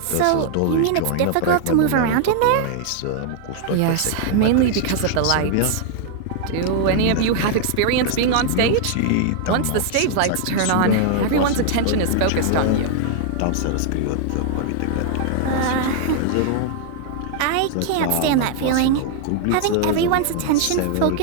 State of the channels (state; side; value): different; both; correlation 0.00